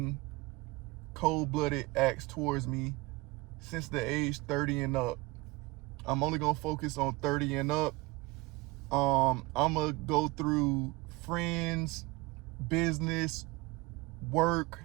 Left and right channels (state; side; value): quieter; left; 22.7 dB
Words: cold-blooded acts towards me since the age 30 and up. I'm only gonna focus on 30 and up. I'm gonna go through friends, business, work,